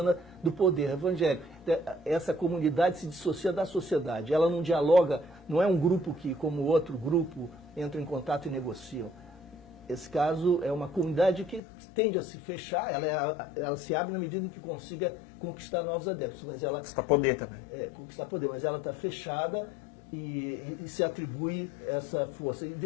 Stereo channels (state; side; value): drops out; right; at 11.6 s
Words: do poder evangélico. Essa comunidade se dissocia da sociedade, ela não dialoga, não é um grupo que, como outro grupo, entra em contato e negociam. Esse caso é uma comunidade que tende a se fechar, ela se abre na medida em que consiga conquistar novos adeptos. Mas ela conquistar poder também. Conquistar poder, mas ela está fechada e se atribui essa força. E